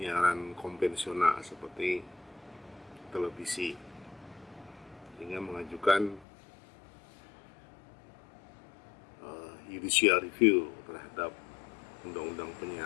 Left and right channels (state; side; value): drops out; right; at 6.2 s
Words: konvensional seperti televisi, sehingga mengajukan judicial review terhadap undang-undang